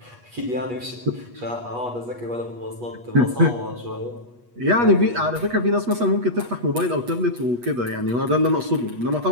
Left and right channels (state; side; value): late; left; 8.3 ms